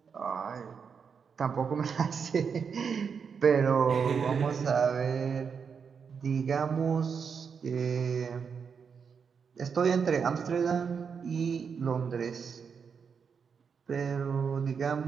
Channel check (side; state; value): left; quieter; 6.3 dB